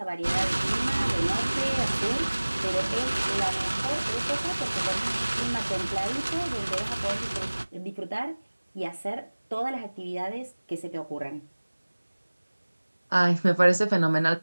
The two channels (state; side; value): inverted; both; correlation -1.00